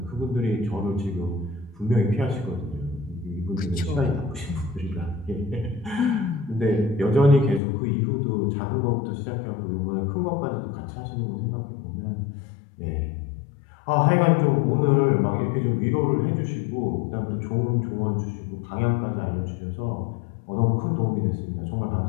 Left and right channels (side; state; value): right; drops out; at 7.6 s